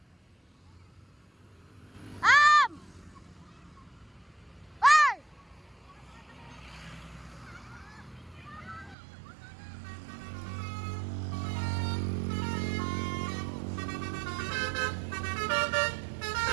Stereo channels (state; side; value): drops out; left; at 9.0 s